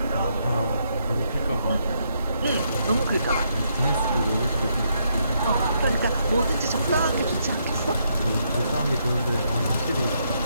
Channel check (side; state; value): both; inverted; correlation -0.76